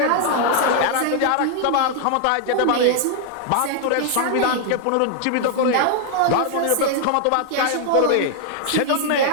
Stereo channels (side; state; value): both; different; correlation 0.00